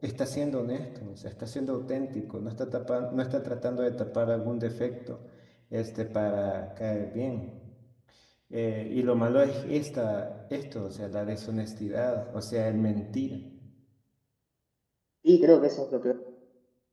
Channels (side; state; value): both; identical; correlation 1.00